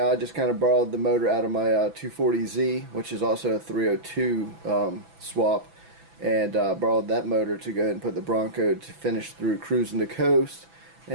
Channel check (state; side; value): late; left; 6.0 ms